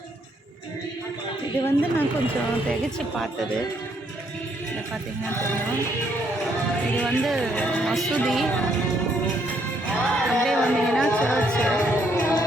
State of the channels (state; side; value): normal; both; correlation 0.71